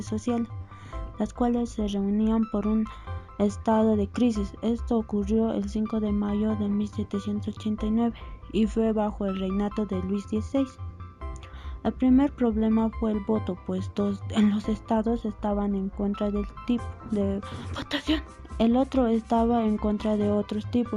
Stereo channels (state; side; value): identical; both; correlation 1.00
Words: sociales, las cuales se reunían por un estado de crisis. Esto ocurrió el 5 de mayo de 1789 y fue bajo el reinado de Luis XVI. El primer problema fue el voto, pues en los estados estaban en contra del tipo de votación. El otro estaba en contra de otros